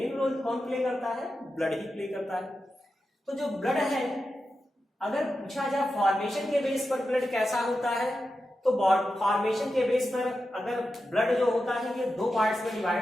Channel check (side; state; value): both; normal; correlation 0.90